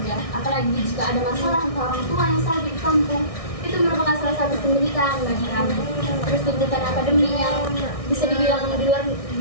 apalagi jika ada masalah untuk orang tua yang sakit di kampung, itu merupakan salah satu penderitaan bagi kami. Terus tuntutan akademik yang bisa dibilang di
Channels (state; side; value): late; right; 1.6 ms